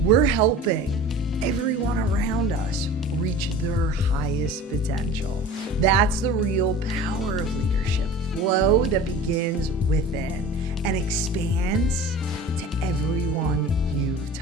we're helping everyone around us reach their highest potential. That's the real power of leadership. Flow that begins within and expands to everyone you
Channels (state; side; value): normal; both; correlation 0.39